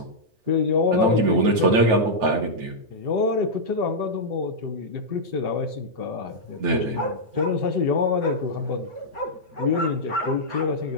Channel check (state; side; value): late; left; 9.1 ms